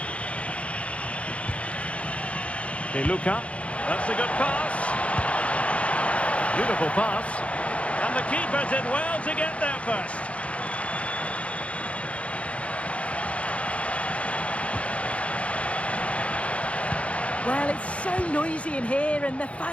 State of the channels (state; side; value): late; right; 0.063 ms